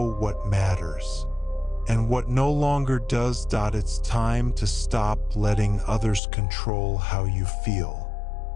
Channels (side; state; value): right; drops out; at 6.2 s